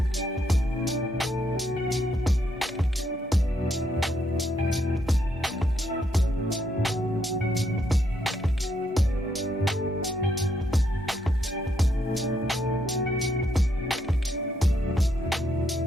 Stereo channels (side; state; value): both; normal; correlation 0.76